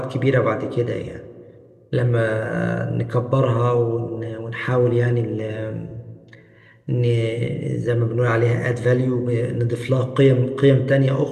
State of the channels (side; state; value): both; identical; correlation 1.00